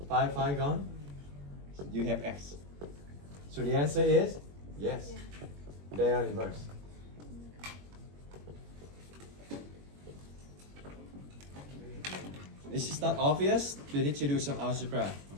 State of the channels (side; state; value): left; late; 21 ms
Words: 5 gone. You have x. So the answer is yes. They are inverse. This is not obvious. You need to do some algebra,